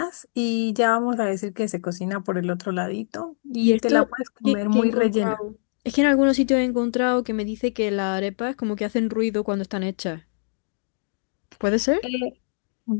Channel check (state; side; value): silent; right; digital silence